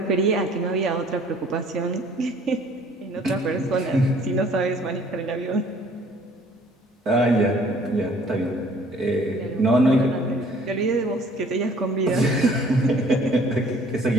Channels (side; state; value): both; normal; correlation 0.56